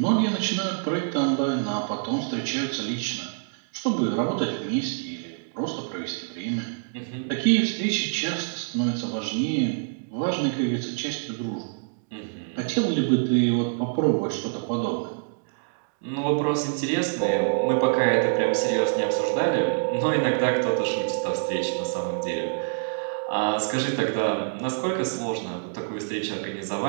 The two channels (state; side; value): silent; left; digital silence